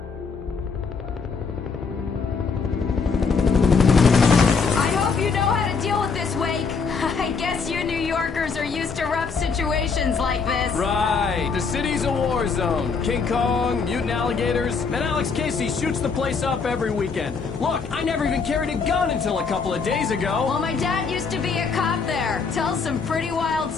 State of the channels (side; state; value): right; quieter; 5.2 dB